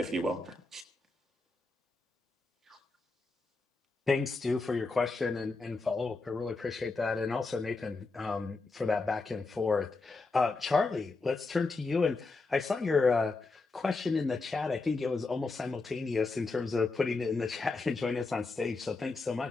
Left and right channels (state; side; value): quieter; right; 3.7 dB